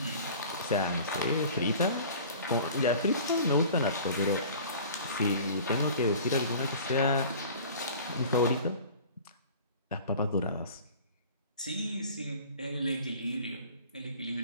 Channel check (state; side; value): inverted; both; correlation -0.44